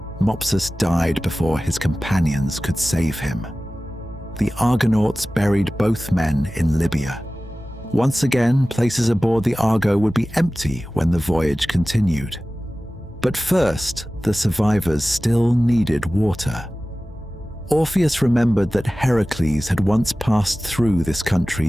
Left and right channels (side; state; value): both; normal; correlation 0.96